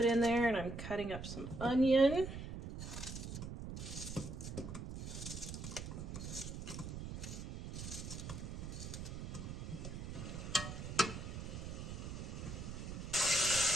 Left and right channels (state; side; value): noise; right; rumble, 7 dB below the sound